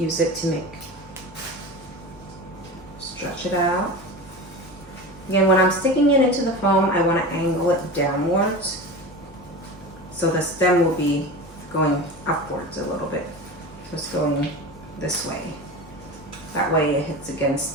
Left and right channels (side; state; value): both; normal; correlation 0.29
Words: it to stretch it out. Again, when I'm sticking it into the foam, I want to angle it downwards. So the stem will be going upwards a little bit. So it's going this way. That way it hits